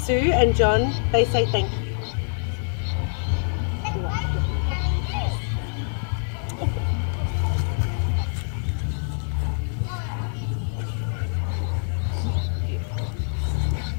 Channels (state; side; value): silent; right; digital silence